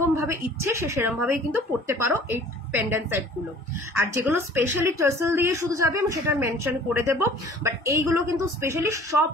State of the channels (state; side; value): normal; both; correlation 0.50